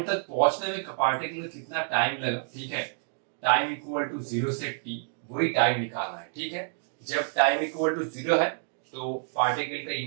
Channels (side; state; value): left; silent; digital silence